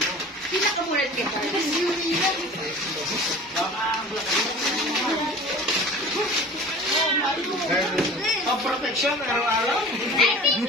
Sila ka muna kita. pang-protection araw-araw. I think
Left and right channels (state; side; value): normal; both; correlation 0.41